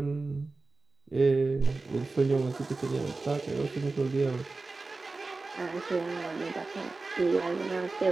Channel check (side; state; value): left; quieter; 3.6 dB